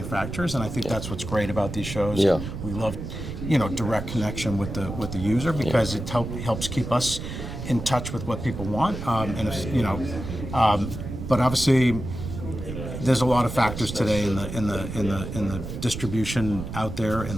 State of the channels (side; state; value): right; noise; rumble, 7 dB below the sound